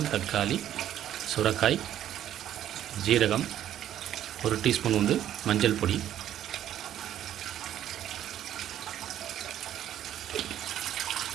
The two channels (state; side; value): quieter; left; 11.4 dB